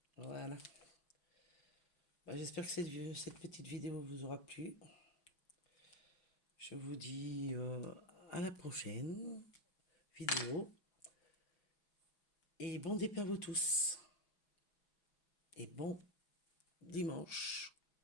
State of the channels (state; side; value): late; right; 5.6 ms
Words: Voilà. Bah, j'espère que cette petite vidéo vous aura plu. Je vous dis à la prochaine vidéo. Et bon départ à vous tous. Et bon dimanche.